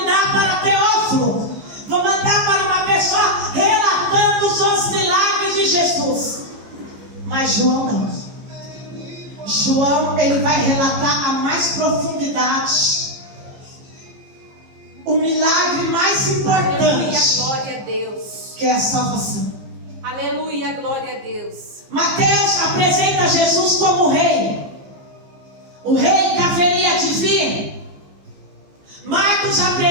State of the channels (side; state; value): left; late; 15 ms